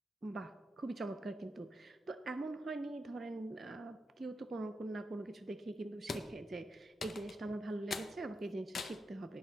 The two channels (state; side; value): normal; both; correlation 0.86